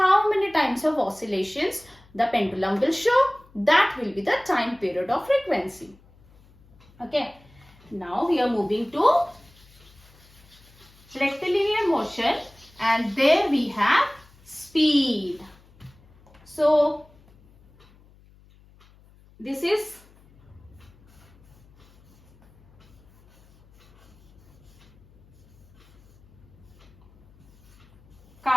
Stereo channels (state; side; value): noise; left; hum, 28 dB below the sound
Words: many times of oscillations the pendulum will show? That will be the time period of frequency. Okay. Now we are moving to rectilinear motion, and there we have speed. So this is